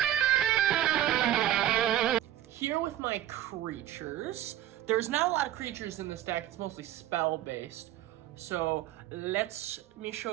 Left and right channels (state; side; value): quieter; left; 12.4 dB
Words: Here with my creatures. There's not a lot of creatures in this deck, it's mostly spell-based. So let me